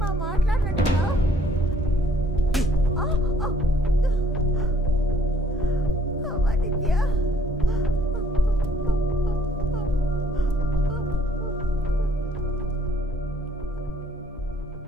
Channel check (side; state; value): both; normal; correlation 0.63